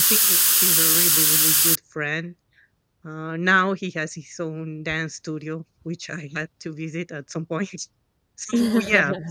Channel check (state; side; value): identical; both; correlation 1.00